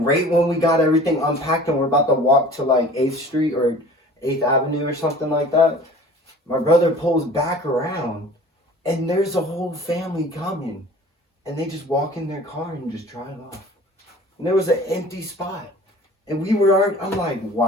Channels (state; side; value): normal; both; correlation 0.45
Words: right when we got everything unpacked and we're about to walk to like 8th Street or 8th Avenue or something like that, my brother pulls back around and there's a whole family coming. And they just walk in their car and just drive off. And there was an empty spot. And I'm like,